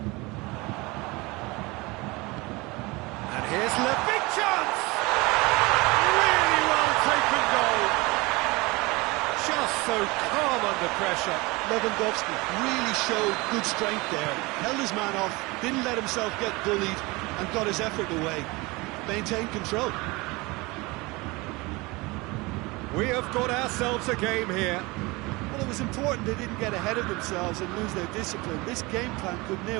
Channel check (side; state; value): left; quieter; 23.9 dB